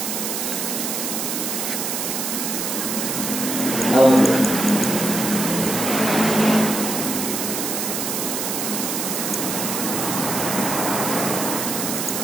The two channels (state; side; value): noise; right; hiss, 2 dB below the sound